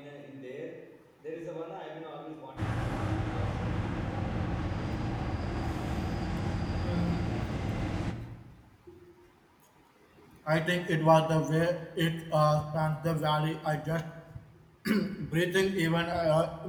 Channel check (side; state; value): both; identical; correlation 1.00